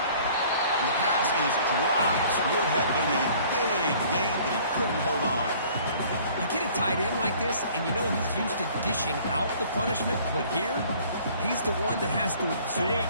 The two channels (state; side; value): inverted; both; correlation -0.53